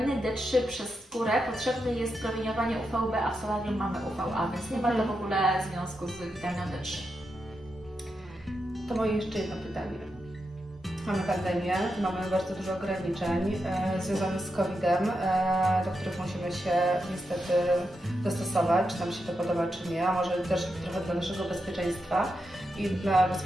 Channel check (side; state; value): both; normal; correlation 0.86